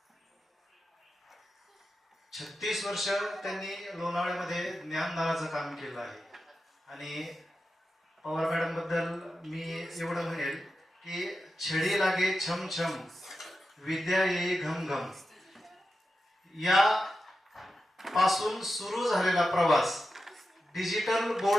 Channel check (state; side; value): normal; both; correlation 0.91